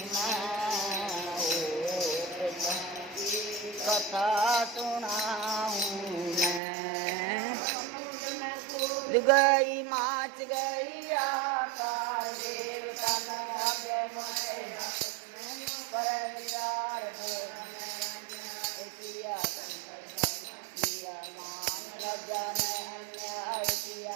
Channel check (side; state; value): left; drops out; at 6.6 s